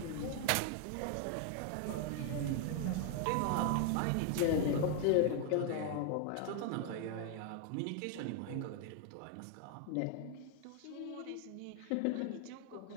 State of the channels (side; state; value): both; different; correlation 0.00